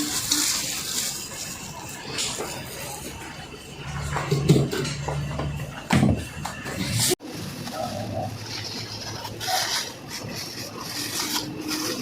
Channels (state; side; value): identical; both; correlation 1.00